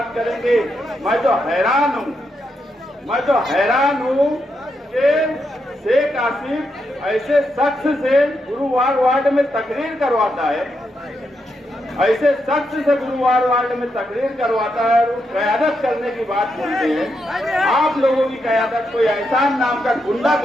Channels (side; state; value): both; normal; correlation 0.82